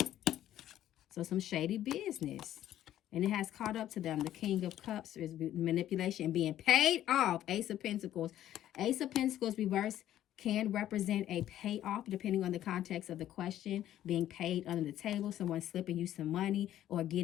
So some shady business. And it has caught up to them. The King of Cups is manipulation and being paid off. Ace of Pentacles. Ace of Pentacles reverse can represent a payoff depending on the context of the question. Being paid under the table. Someone slipping you some money or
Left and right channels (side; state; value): right; quieter; 12.3 dB